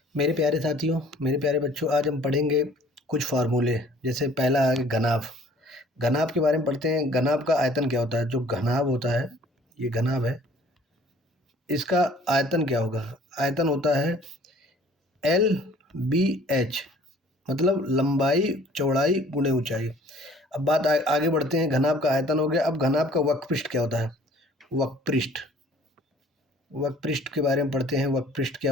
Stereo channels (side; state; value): both; normal; correlation 0.54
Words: मेरे प्यारे साथियों, मेरे प्यारे बच्चों, आज हम पढ़ेंगे कुछ फार्मूले। जैसे पहला है घनाभ। घनाभ के बारे में पढ़ते हैं। घनाभ का आयतन क्या होता है? जो घनाभ होता है, ये घनाभ है, इसका आयतन क्या होगा? आयतन होता है एल बी एच, मतलब लंबाई चौड़ाई गुणे ऊंचाई। अब बात आगे बढ़ते हैं। घनाभ का आयतन हो गया। अब घनाभ का वक्रपृष्ठ क्या होता है? वक्रपृष्ठ, वक्रपृष्ठ के बारे में पढ़ते हैं। वक्रपृष्ठ